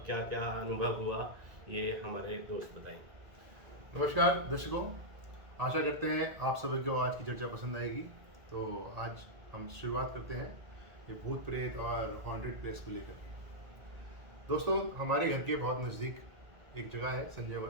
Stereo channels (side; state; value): left; late; 1.8 ms